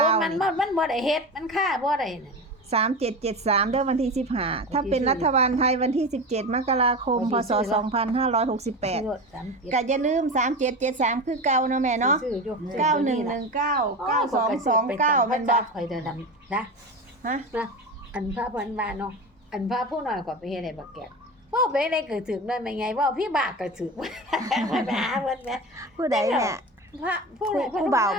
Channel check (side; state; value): both; normal; correlation 0.26